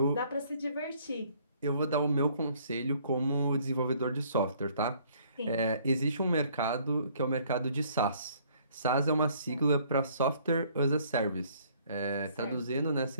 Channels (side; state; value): both; inverted; correlation -0.61